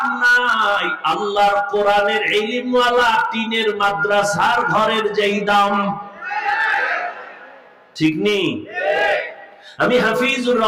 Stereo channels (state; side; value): identical; both; correlation 1.00